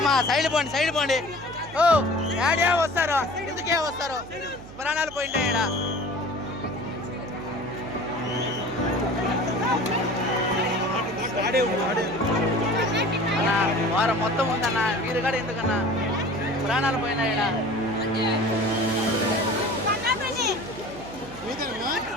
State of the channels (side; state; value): right; noise; hum, 18 dB below the sound